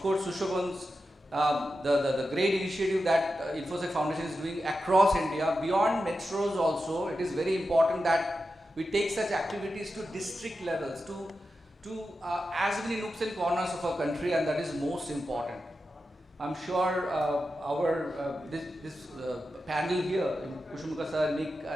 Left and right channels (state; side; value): normal; both; correlation 0.90